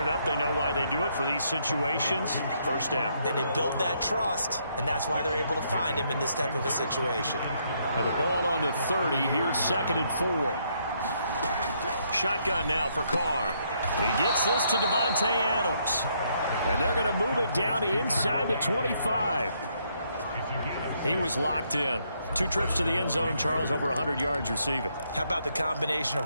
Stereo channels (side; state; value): both; inverted; correlation -0.73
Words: up. They know why they do it for these situations. First down. And they build that trust, and that's why they're able to find him in this type of a situation. And the ball on the 30. Here's 2nd and 4. Shotgun now for Carr. He gets this to Devontae Adams. And they're going to move it down to inside the 25. He was locked in. 2 trips to the end zone, Charles, over 100 yards receiving. How about the combination